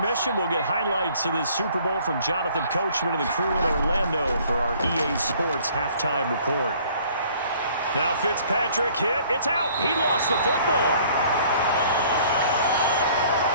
we'll get highlights of this Super Bowl from Jonathan Coachman and the crew in Orlando for our EA Sports halftime report. Now Fitzpatrick hit. It's out. He lost the football.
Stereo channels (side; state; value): both; inverted; correlation -0.56